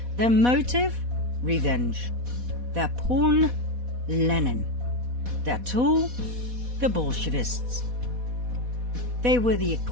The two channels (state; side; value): late; left; 4.1 ms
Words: Their motive? Revenge. Their pawn? Lenin. Their tool? The Bolshevists. They were the